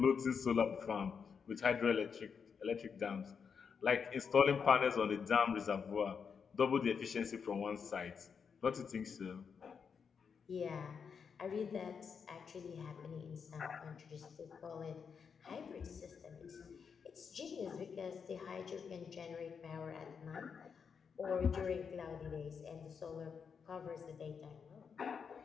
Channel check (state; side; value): quieter; right; 6.3 dB